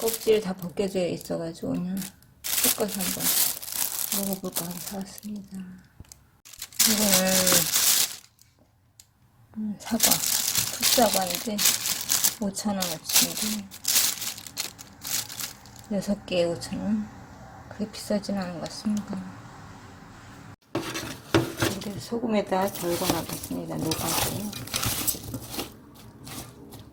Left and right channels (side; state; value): both; identical; correlation 1.00